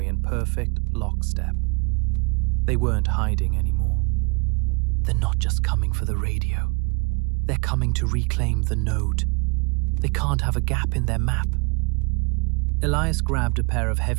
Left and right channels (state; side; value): quieter; left; 30.9 dB